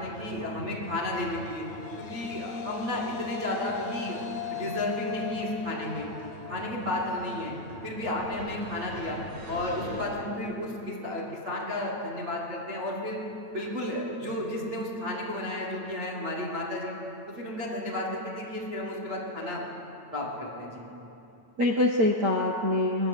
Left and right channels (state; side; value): late; left; 9.0 ms